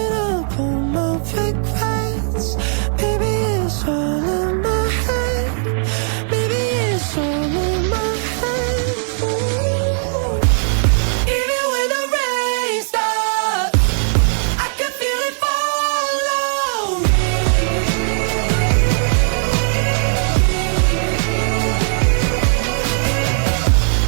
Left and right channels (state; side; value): silent; left; 67 dB below the other